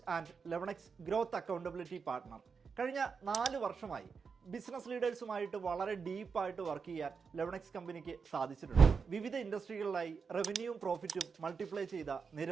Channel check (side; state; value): left; quieter; 5.5 dB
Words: and 11x growth accountability partner. കഴിഞ്ഞ 4 വർഷമായി ബിസിനസ് ലീഡേഴ്സുമായിട്ട് വളരെ ഡീപ്പായിട്ട് വർക്ക് ചെയ്യാൻ 11x കമ്പനിക്ക് സാധിച്ചിട്ടുണ്ട്. വിവിധ ഇൻഡസ്ട്രികളിലായി റവന്യൂവും പ്രോഫിറ്റും മൾട്ടിപ്ലൈ ചെയ്ത